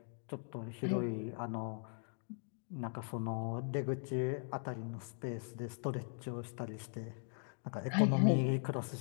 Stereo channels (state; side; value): silent; right; 51 dB below the other